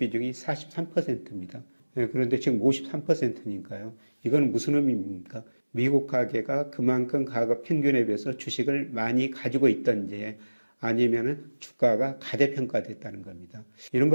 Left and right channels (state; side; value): inverted; both; correlation -1.00